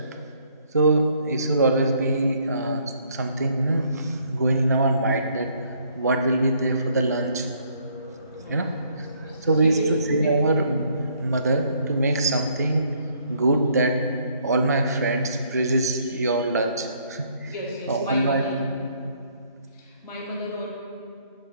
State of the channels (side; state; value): both; inverted; correlation -0.66